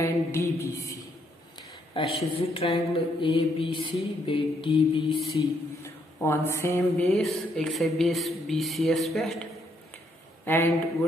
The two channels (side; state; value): both; normal; correlation 0.73